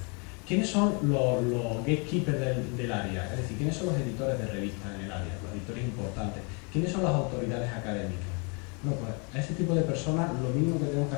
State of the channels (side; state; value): right; quieter; 33.7 dB